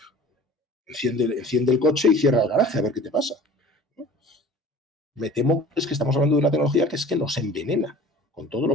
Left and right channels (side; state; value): both; normal; correlation 0.44